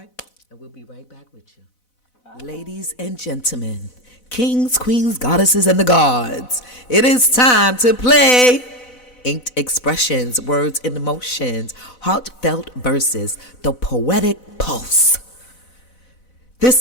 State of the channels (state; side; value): late; right; 4.0 ms